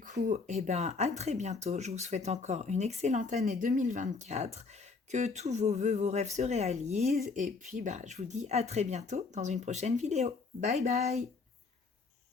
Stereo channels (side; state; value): right; quieter; 4.4 dB